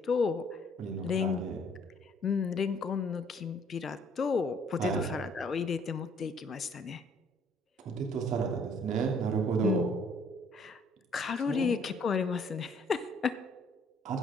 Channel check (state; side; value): normal; both; correlation 0.62